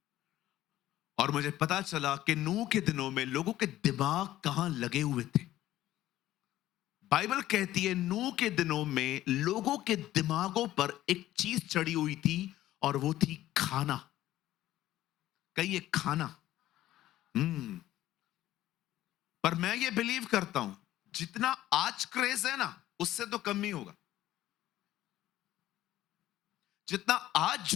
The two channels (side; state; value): right; quieter; 14.3 dB